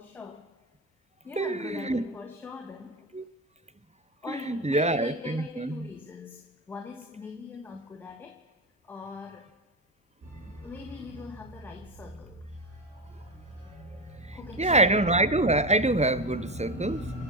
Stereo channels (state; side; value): normal; both; correlation 0.18